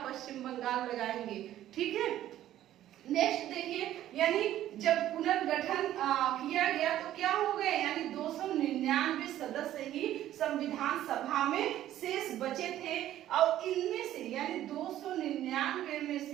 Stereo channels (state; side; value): quieter; left; 12.8 dB